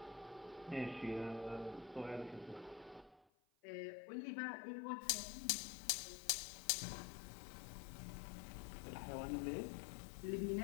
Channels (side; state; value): right; drops out; at 3.2 s